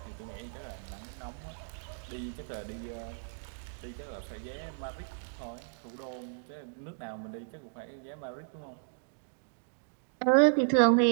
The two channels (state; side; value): silent; left; digital silence